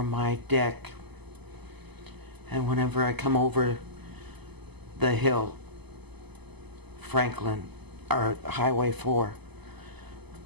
my deck, and whenever I come over the hill, Franklin, or Highway 4,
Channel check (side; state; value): left; late; 0.99 ms